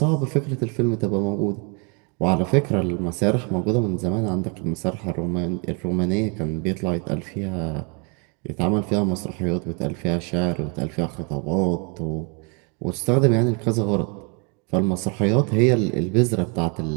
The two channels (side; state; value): left; quieter; 34.1 dB